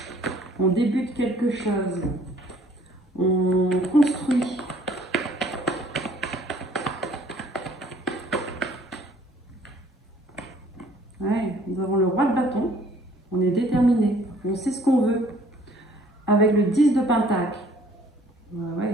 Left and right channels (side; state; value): both; normal; correlation 0.57